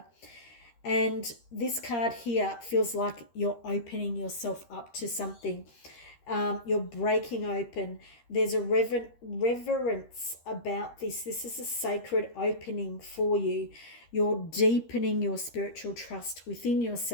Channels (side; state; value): right; late; 13 ms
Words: And this card here feels like you're opening yourself up to something. You're breaking open. There's a reverence about this. This is a sacred opening for you. You're deepening your spiritual trust within